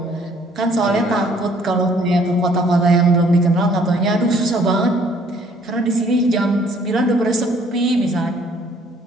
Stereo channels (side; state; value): both; normal; correlation 0.60